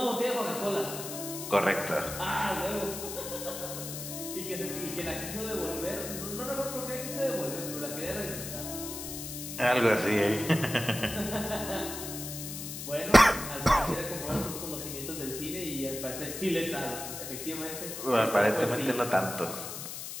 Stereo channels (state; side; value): noise; left; hiss, 7 dB below the sound